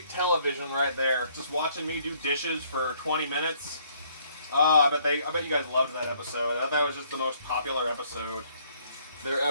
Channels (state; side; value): inverted; both; correlation -0.65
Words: television right there. Just watching me do dishes for 20 minutes. Oh, I bet you guys loved that episode. I thought that was just the most popular episode there